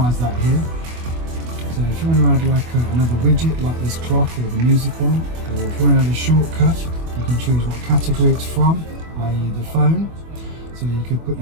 that here. So if you want to add like another widget, like this clock or the music one, or if you want to add a shortcut, you can choose what category it's from, i.e. the phone. So you could put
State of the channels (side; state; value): left; late; 24 ms